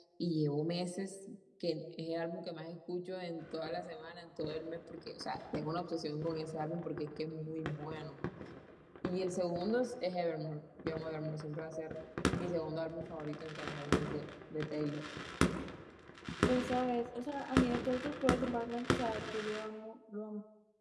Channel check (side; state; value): both; identical; correlation 1.00